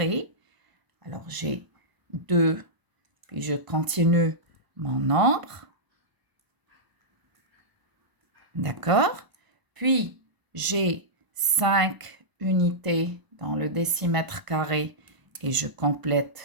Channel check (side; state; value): left; late; 1.0 ms